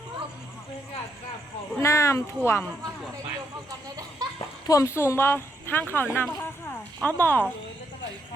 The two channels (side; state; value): both; normal; correlation 0.77